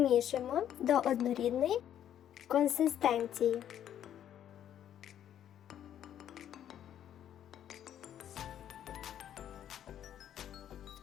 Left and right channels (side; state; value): right; quieter; 10.4 dB